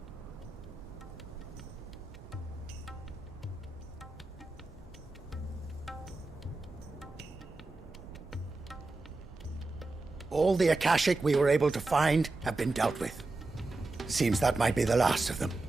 All the Akashic we were able to find have been dealt with. Seems that might be the last of them.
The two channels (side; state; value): left; quieter; 3.3 dB